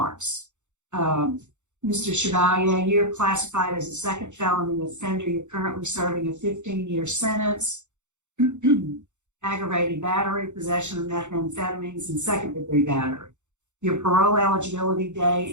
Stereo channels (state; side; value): late; left; 0.84 ms